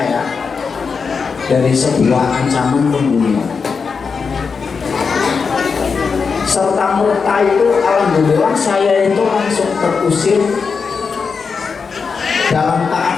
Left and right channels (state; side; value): quieter; right; 5.4 dB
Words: dari sebuah ancaman pembunuhan. Serta merta itu alhamdulillah saya itu langsung terusir dalam